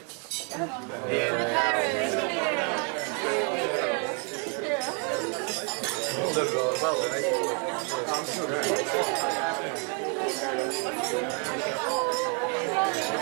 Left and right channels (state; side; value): quieter; left; 38.4 dB